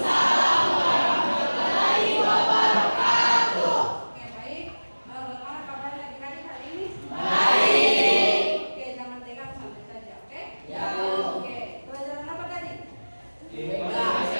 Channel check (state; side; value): inverted; both; correlation -1.00